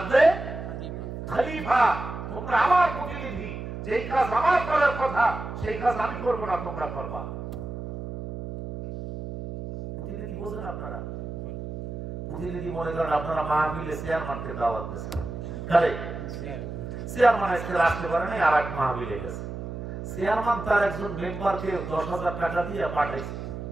খলিফা, তোমরা আমার প্রতিনিধি, যেই কাজ আমার করার কথা সেই কাজ আমি করবো না, তোমরা করবা। প্রতিনিধি বোঝেন আপনারা? প্রতিনিধি মনে করেন আপনারা মাহফিলে চেয়ারম্যানকে দাওয়াত দিয়েছেন, কারে? চেয়ারম্যান আজকে আসতে পারে নাই, আর এক মাহফিলে গেছে। চেয়ারম্যান তার একজন মেম্বারকে 10,000 টাকা দিয়ে পাঠাইছে।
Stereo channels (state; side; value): noise; right; hum, 8 dB below the sound